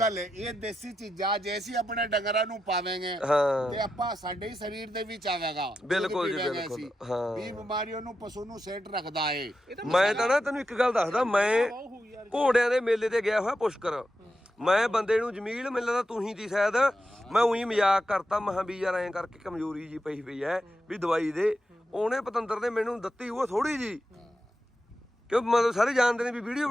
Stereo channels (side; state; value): both; normal; correlation 0.88